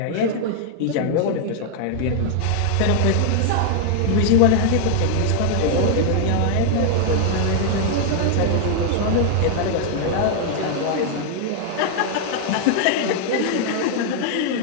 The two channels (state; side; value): different; both; correlation 0.00